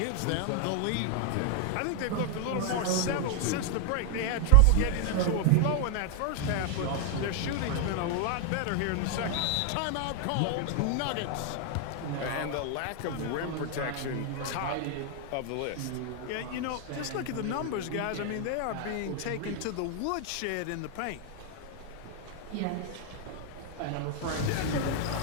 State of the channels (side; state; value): both; different; correlation 0.00